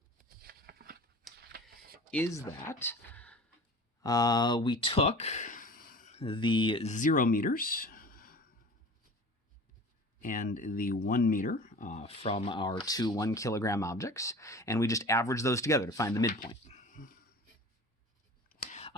is that we took the 0 meters and the 1 meter from our two 1 kilogram objects, and we just averaged those together to find the midpoint.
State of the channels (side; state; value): both; normal; correlation 0.39